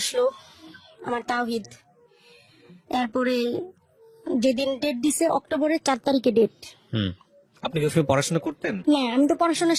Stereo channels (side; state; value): both; identical; correlation 1.00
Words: আমার তাওহীদ, তারপরে যেদিন ডেট দিছে অক্টোবরের 4 তারিখে ডেট। আপনি কি পড়াশোনা করতেন? না, আমি তো পড়াশোনা